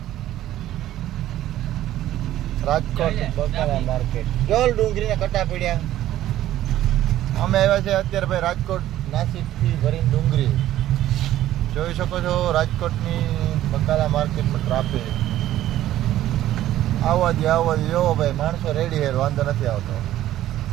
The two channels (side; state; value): left; quieter; 13.4 dB